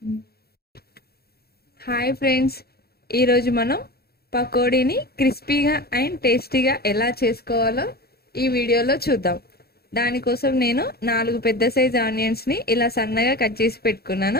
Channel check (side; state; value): right; late; 0.46 ms